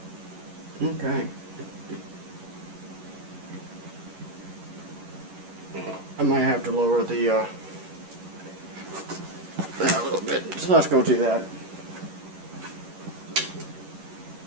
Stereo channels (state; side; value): late; left; 11 ms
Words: Okay. I might have to lower the that a little bit. So let's go do that.